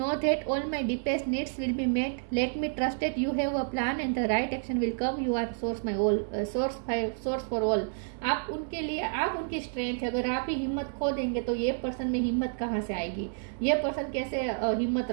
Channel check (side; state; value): left; silent; 58 dB below the other